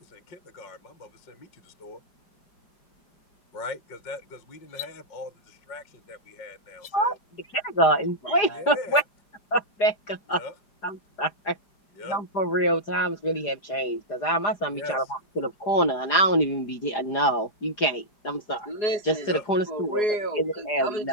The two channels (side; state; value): right; late; 4.9 ms